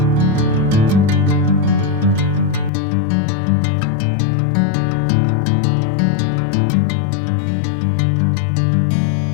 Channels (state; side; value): drops out; right; at 2.7 s